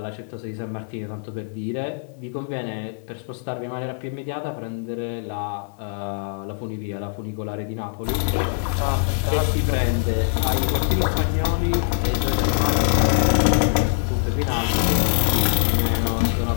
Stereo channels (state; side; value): silent; right; digital silence